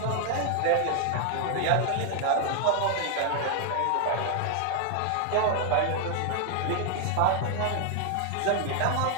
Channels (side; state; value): both; different; correlation 0.00